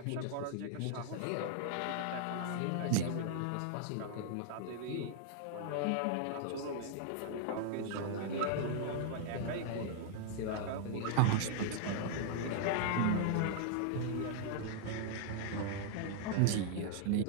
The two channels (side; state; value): both; different; correlation -0.01